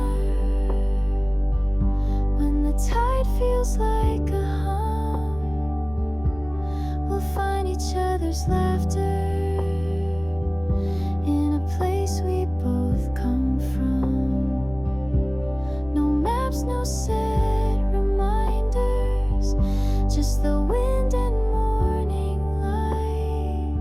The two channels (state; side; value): noise; left; rumble, 19 dB below the sound